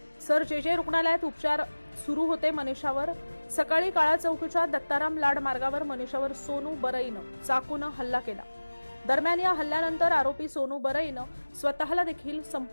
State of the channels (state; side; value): inverted; both; correlation -1.00